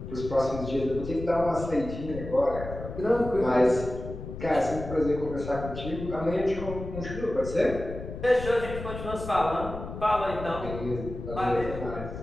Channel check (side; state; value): left; noise; rumble, 9 dB below the sound